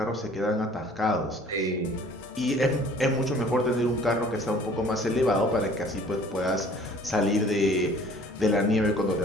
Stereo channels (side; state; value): both; normal; correlation 0.52